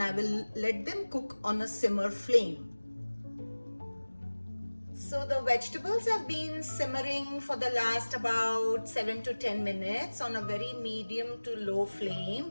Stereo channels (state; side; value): inverted; both; correlation -1.00